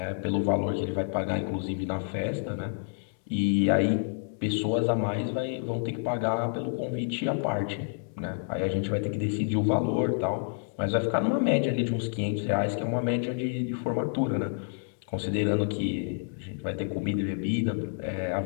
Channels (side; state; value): right; silent; digital silence